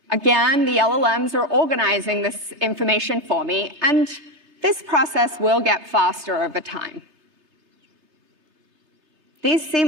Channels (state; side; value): late; left; 2.9 ms